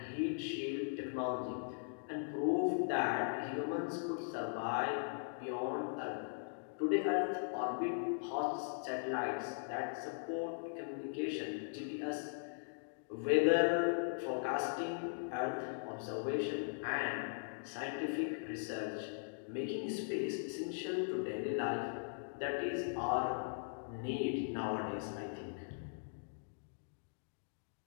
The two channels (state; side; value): silent; right; digital silence